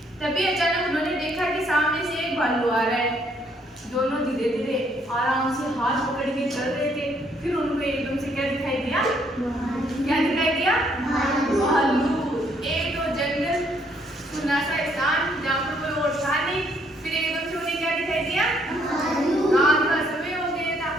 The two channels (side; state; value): both; normal; correlation 0.68